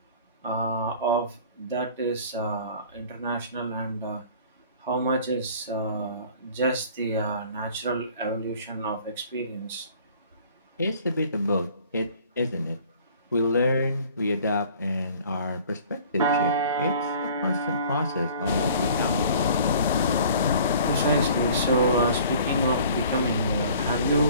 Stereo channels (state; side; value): inverted; both; correlation -0.50